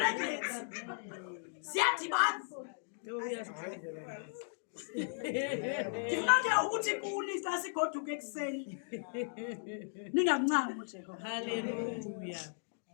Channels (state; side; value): silent; right; digital silence